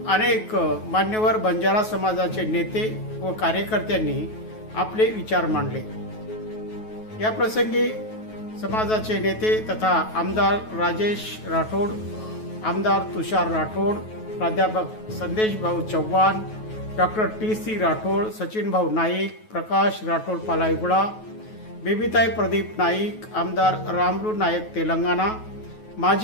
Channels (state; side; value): late; right; 9.3 ms